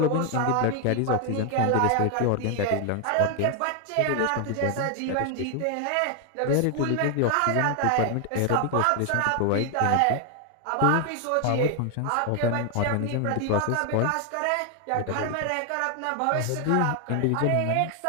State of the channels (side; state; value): both; different; correlation 0.00